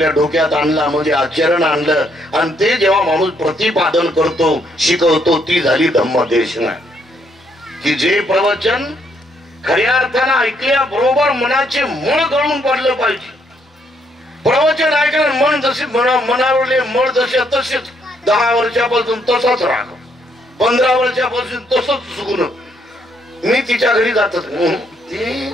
डोक्यात आणला, म्हणजे आचरण आणलं, आणि ते जेव्हा माणूस प्रतिपादन करतो, शिकवतो, ती झाली धम्मदेशना. की जे प्रवचन खऱ्या अर्थानं ऐकल्या बरोबर मनाचे मळ गळून पडलं पाहिजे. प्रवचन ऐकलं मन जसे मनावरले मळ जसे तसेच 10 वर्षापासून तसाच राग, 15 वर्षापासून तसंच सुगुण. मी तिच्या घरी जातच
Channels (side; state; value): both; normal; correlation 0.72